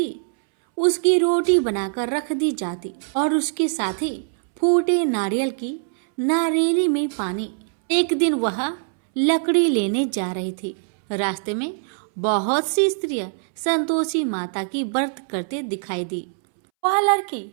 उसकी रोटी बनाकर रख दी जाती और उसके साथ ही फूटे नारियल की नारेली में पानी। एक दिन वह लकड़ी लेने जा रही थी। रास्ते में बहुत सी स्त्रियां संतोषी माता की व्रत करते दिखाई दी। वह लड़की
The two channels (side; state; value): left; silent; 64 dB below the other